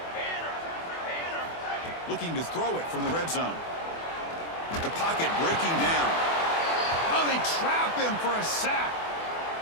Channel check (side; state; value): right; late; 24 ms